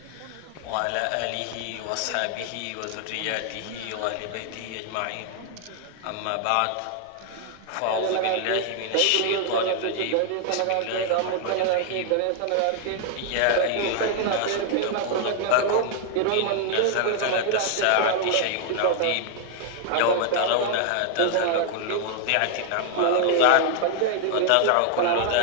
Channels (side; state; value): both; different; correlation 0.00